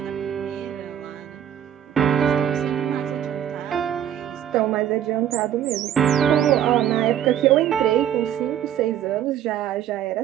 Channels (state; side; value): quieter; left; 10.3 dB